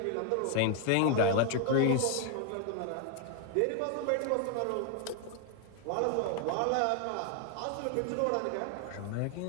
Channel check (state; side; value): different; both; correlation 0.00